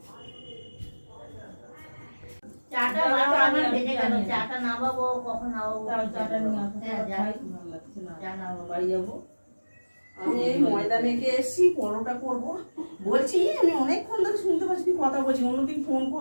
চাটা বাবা আমার ভেজে গেল, চাটা নামাবো কখন নামাবো? চাটা নিয়ে আসো। হ্যাঁ যাই, ভালো লাগছে না, চা নামাবো, বাড়ি যাবো। আমি এই ময়দা মেখে এসেছি, পরোটা করবো বলছি। আমি অনেকক্ষণ ধরে শুনতে পাচ্ছি তুই কথা বলছি, অন্যদিন ফোন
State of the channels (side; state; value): both; inverted; correlation -1.00